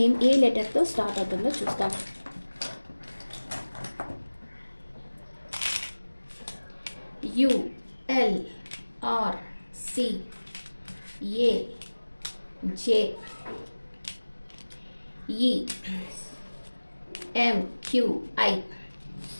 ఏ లెటర్తో స్టార్ట్ అవుతుందో చూస్తాం. U, L, R, C, A, J, E, M, Q, I.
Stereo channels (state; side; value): inverted; both; correlation -1.00